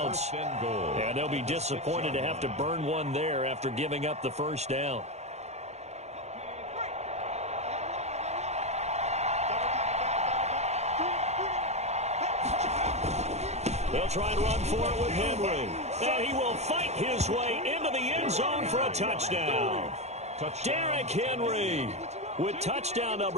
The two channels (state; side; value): late; left; 0.32 ms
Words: And they'll be disappointed to have to burn one there after giving up the first down. They'll try and run for it with Henry. And he will fight his way into the end zone for a touchdown. Derrick Henry with touchdown